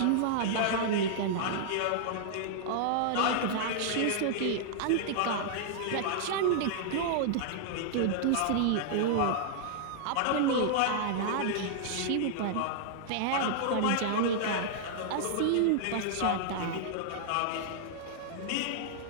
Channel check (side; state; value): both; different; correlation -0.01